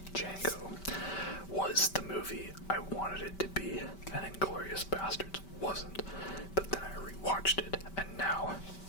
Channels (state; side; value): late; right; 5.2 ms